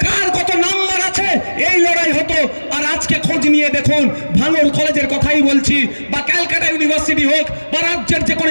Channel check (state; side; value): inverted; both; correlation -1.00